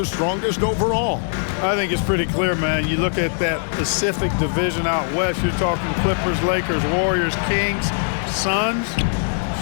strongest overall? I think it's pretty clear, man. You look at that Pacific division out west, you're talking Clippers, Lakers, Warriors, Kings, Suns.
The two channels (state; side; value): silent; right; 59 dB below the other